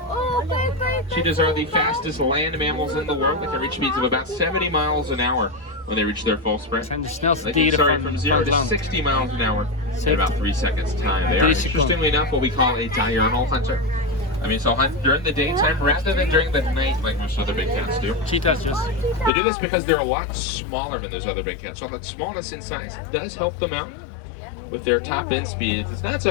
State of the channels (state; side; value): drops out; right; at 19.3 s